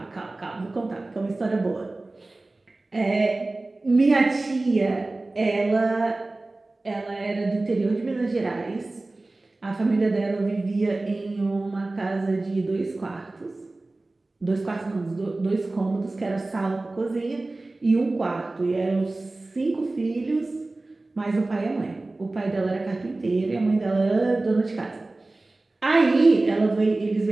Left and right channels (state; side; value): quieter; left; 3.0 dB